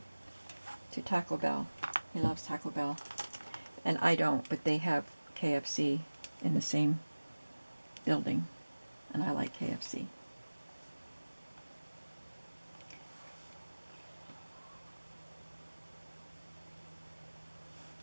to Taco Bell. He loves Taco Bell. And I don't, but they have KFC in the same building, and I like KFC.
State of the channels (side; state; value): both; inverted; correlation -1.00